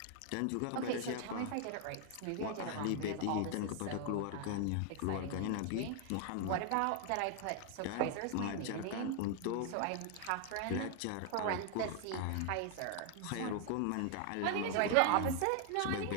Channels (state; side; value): different; both; correlation 0.00